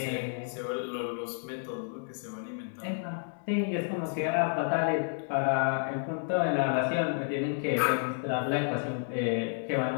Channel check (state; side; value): silent; right; digital silence